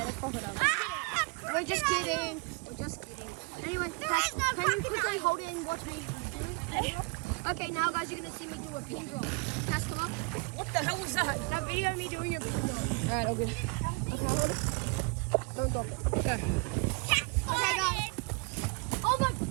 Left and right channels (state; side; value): quieter; left; 31.9 dB